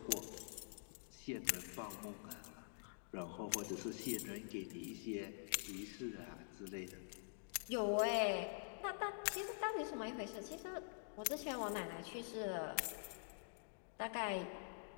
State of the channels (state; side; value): silent; right; digital silence